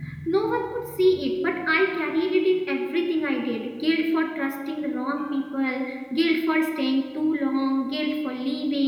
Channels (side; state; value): both; identical; correlation 1.00